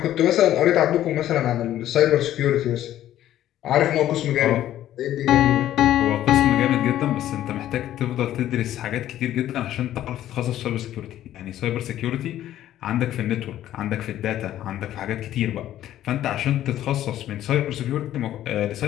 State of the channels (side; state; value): right; quieter; 12.6 dB